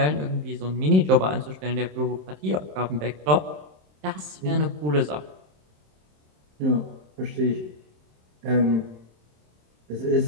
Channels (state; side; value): late; left; 27 ms